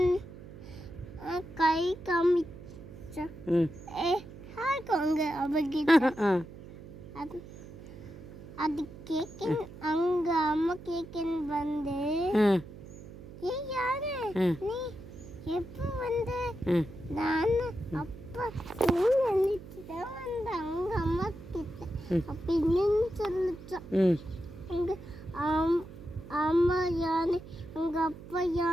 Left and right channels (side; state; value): right; noise; hum, 15 dB below the sound